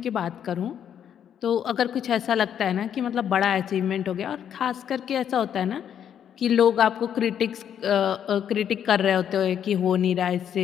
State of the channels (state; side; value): quieter; right; 9.1 dB